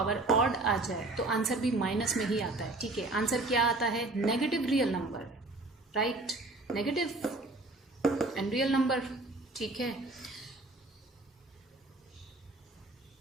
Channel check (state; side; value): quieter; left; 3.0 dB